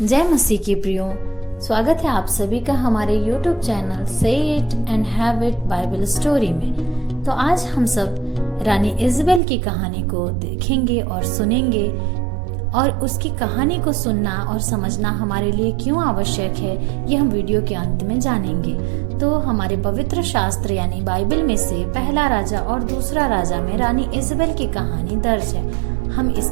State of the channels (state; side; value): drops out; left; at 9.4 s